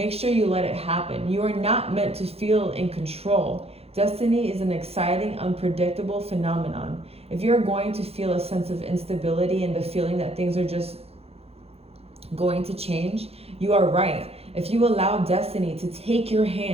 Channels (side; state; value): left; late; 0.29 ms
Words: sure you let it happen. You are not meant to feel in control. Destiny is an exciting, unpredictable phenomenon. If you're going to feel a sense of instability and the feeling that things are just going to change, you are right. If you allow destiny to take your